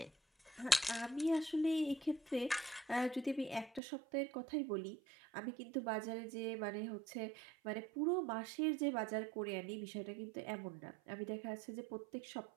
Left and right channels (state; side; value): drops out; left; at 3.8 s